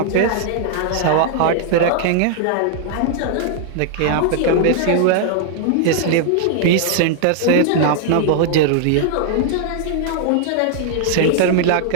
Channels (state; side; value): different; both; correlation 0.00